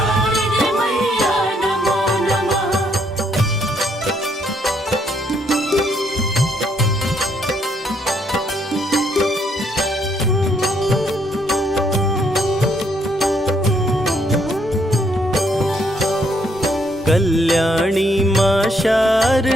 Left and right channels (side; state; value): both; normal; correlation 0.71